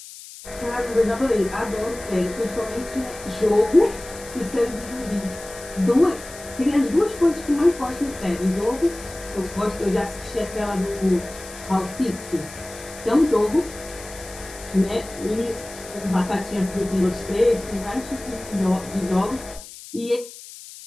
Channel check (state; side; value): noise; left; hiss, 16 dB below the sound